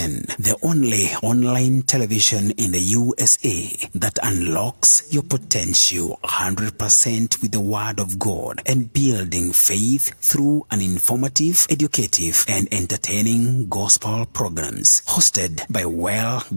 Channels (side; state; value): both; inverted; correlation -1.00